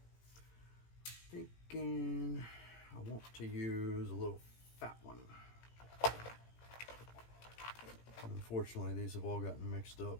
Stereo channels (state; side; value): late; right; 18 ms